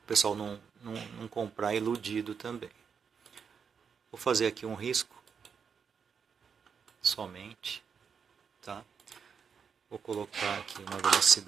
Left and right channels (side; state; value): left; quieter; 6.5 dB